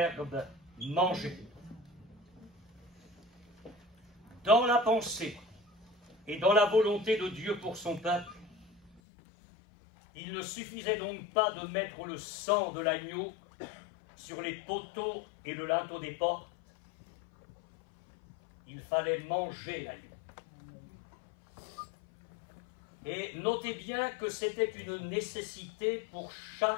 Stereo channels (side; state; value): right; drops out; at 9.0 s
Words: manger. Dans la pensée et dans la volonté de Dieu pour son peuple, il ne suffisait donc pas de mettre le sang de l'agneau sur les poteaux et le linteau des portes. Il fallait manger l'agneau. Et notez bien que c'était une nécessité pour chaque